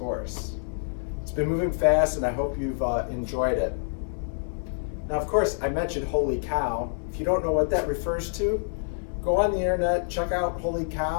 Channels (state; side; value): silent; right; digital silence